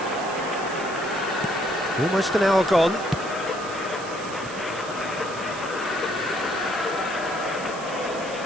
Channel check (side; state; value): right; noise; hiss, 14 dB below the sound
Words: Almost an hour gone.